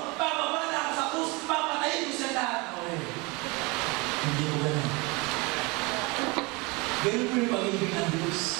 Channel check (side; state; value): left; quieter; 26.6 dB